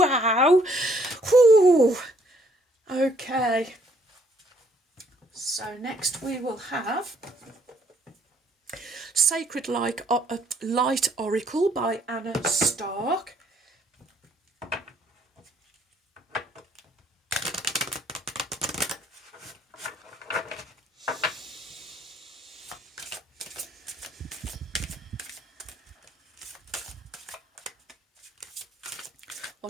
Whew. Okay. So next we will have Sacred Light Oracle by Anna Stark.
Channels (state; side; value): normal; both; correlation 0.66